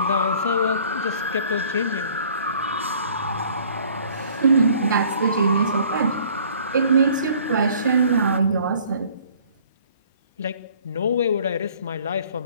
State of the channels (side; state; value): both; inverted; correlation -0.55